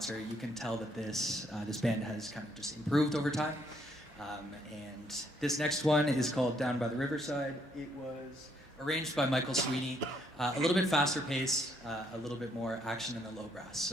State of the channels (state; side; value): normal; both; correlation 0.71